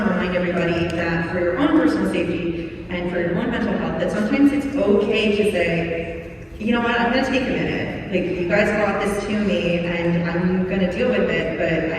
to remind everybody that for your own personal safety and for your own mental health, that sometimes it's okay to say, you know what, I'm going to take a minute. Like, you guys brought this to me, and I'm going to deal with it, but I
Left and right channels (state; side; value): identical; both; correlation 1.00